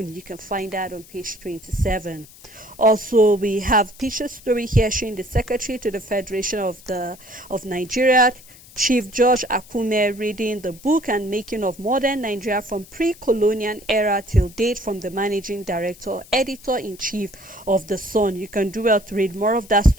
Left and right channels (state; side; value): noise; left; hiss, 22 dB below the sound